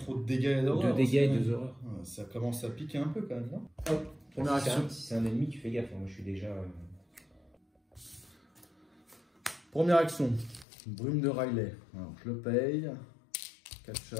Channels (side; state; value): right; drops out; at 10.7 s